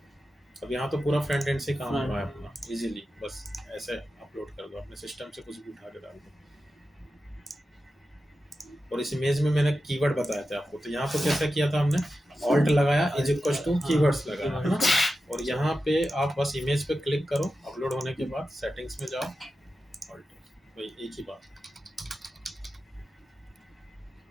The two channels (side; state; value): both; normal; correlation 0.92